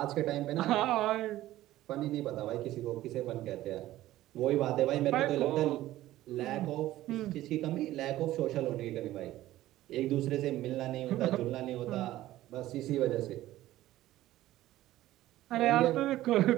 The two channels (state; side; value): quieter; left; 15.1 dB